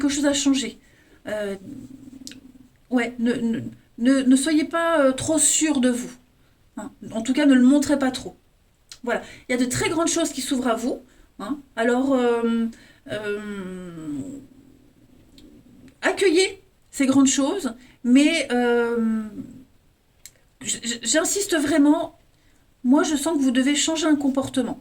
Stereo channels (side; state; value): both; identical; correlation 1.00